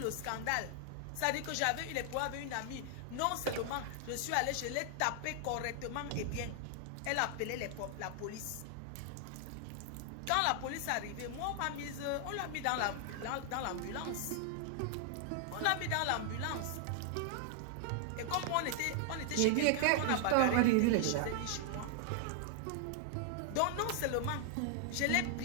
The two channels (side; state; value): both; different; correlation 0.00